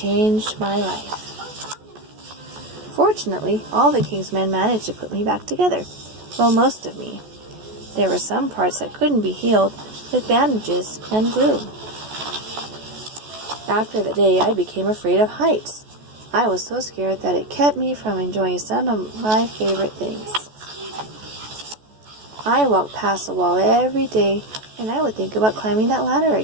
my life. Fortunately, all the king's men managed to put me back together. Well, most of me. There were some parts that couldn't be healed with bandages and glue. After the day, I became afraid of heights. I was so scared that it kept me from enjoying some of my favorite things. I walked past the wall every day, and I would think about climbing that ladder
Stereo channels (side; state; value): left; late; 14 ms